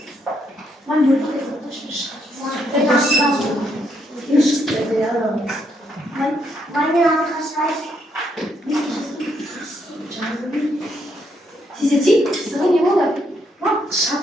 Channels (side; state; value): both; normal; correlation 0.75